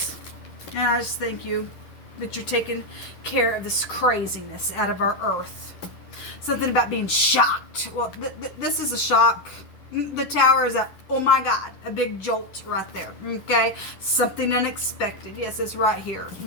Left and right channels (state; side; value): late; right; 11 ms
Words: And I just thank you that you're taking care of this craziness out of our earth. Something about being shocked. Well, this is a shock. The Tower is a, oh my God, a big jolt right there, okay? Something unexpected. Yes, it's right here,